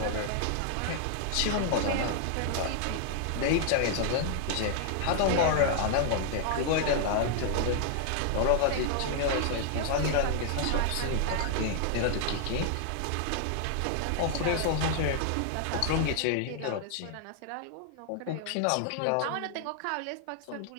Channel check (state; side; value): different; both; correlation 0.00